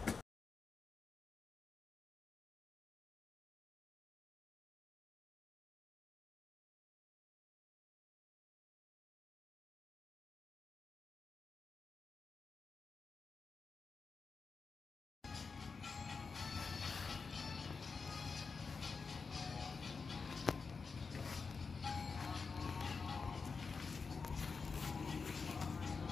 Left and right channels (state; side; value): quieter; right; 4.9 dB